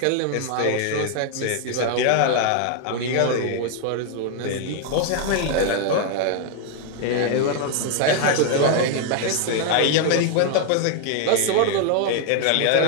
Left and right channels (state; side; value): different; both; correlation 0.01